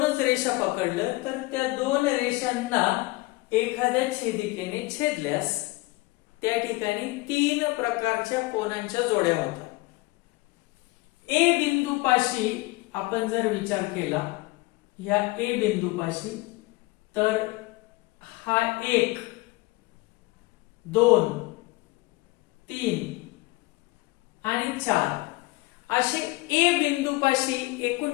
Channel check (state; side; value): quieter; right; 22.4 dB